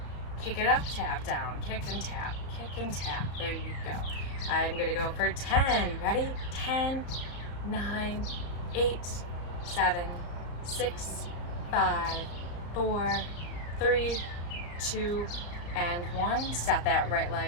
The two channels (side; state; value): right; late; 34 ms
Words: kick it up, tap down, kick and tap, kick and tap. There you go. I'm going to go for 10. Ready? 10, 9, 8, 7, 6, 5, 4, 3, 2, and 1. Set that right